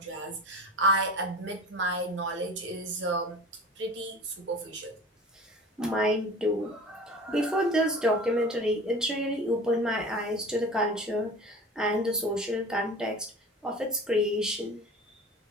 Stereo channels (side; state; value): both; normal; correlation 0.38